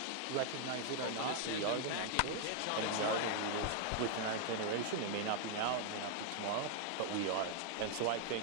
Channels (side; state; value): both; different; correlation 0.00